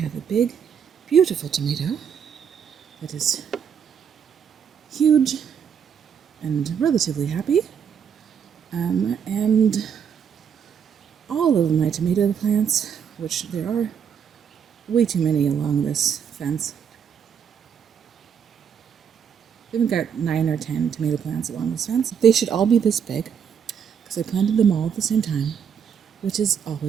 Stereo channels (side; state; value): left; quieter; 7.6 dB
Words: a big, beautiful tomato that is huge and relatively happy. And all of my tomato plants, which there are way too many along this fence. We've got 9 or 10 tomato plants along this fence. They should all be this big because I planted them all at the same time, which is